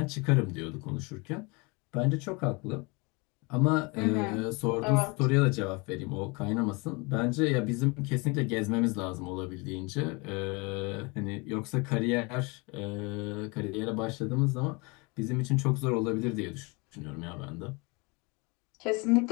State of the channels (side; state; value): right; quieter; 28.3 dB